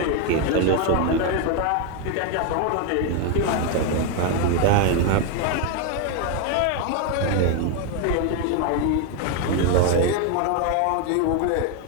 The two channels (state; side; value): different; both; correlation 0.01